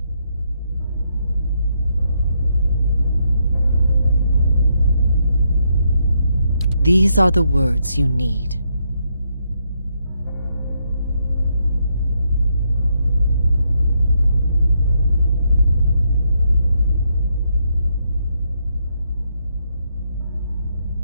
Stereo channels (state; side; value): inverted; both; correlation -0.78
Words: These are the words you need.